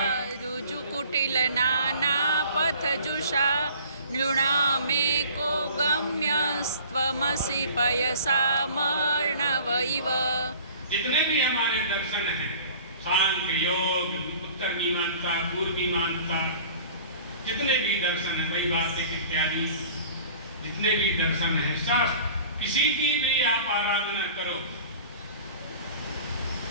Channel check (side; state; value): both; inverted; correlation -0.45